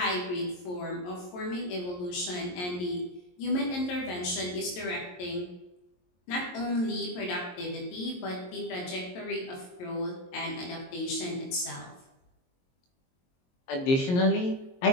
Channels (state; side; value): late; right; 22 ms